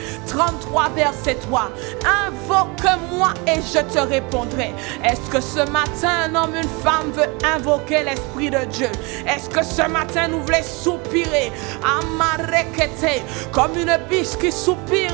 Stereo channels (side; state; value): left; quieter; 27.9 dB